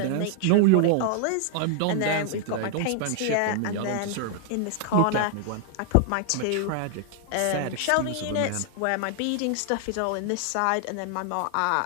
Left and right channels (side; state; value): both; different; correlation 0.00